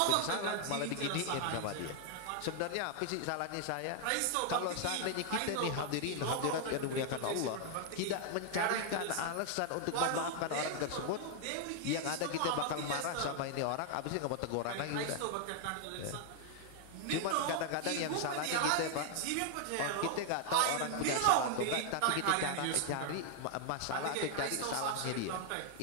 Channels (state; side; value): different; both; correlation 0.00